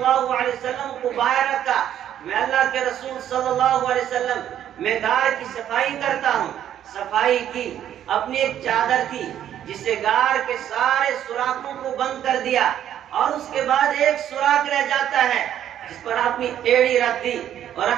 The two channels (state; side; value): quieter; left; 10.7 dB